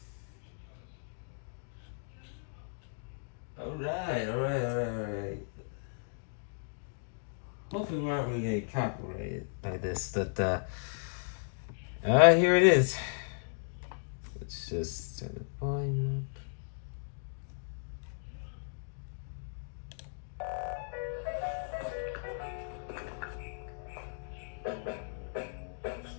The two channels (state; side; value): silent; right; digital silence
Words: Alright. Hopefully we're not really getting copyrighted by this, but here it is. Let's just turn the volume up.